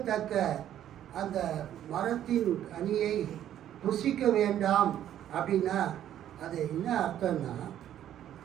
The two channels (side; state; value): left; quieter; 11.2 dB